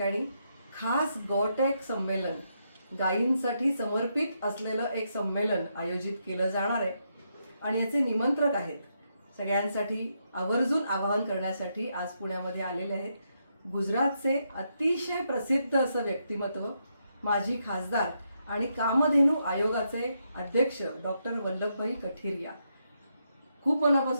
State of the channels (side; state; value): both; inverted; correlation -0.80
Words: खास गॉटेक संमेलन, गायींसाठी समर्पित असलेलं एक संमेलन आयोजित केलं जाणार आहे. आणि याचे निमंत्रक आहेत, सगळ्यांसाठी आवर्जून आवाहन करण्यासाठी आज पुण्यामध्ये आलेले आहेत गुजरातचे अतिशय प्रसिद्ध असं व्यक्तिमत्व, माजी खासदार आणि कामधेनू आयोगाचे अध्यक्ष डॉक्टर वल्लभभाई कठिरिया. खूप